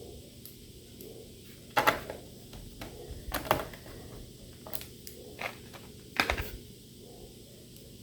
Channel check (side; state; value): both; identical; correlation 1.00